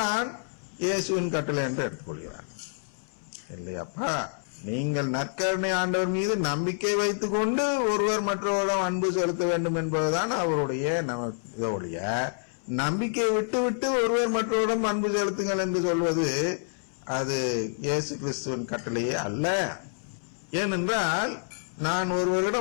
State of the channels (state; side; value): silent; right; 60 dB below the other